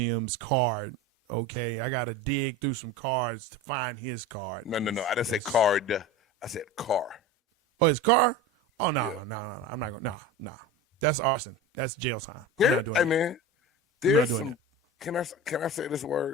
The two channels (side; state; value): both; normal; correlation 0.30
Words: card. Okay, I gotta dig through some cards to find his card. No. I didn't say card. I said car. Oh, his car? Oh no. I'm not going. No. That's arson. That's jail time. I'm not doing it. Hey man, I'm not doing it. Can I say this